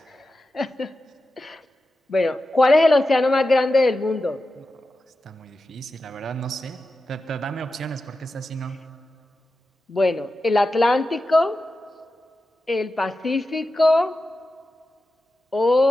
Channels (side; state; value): both; normal; correlation 0.92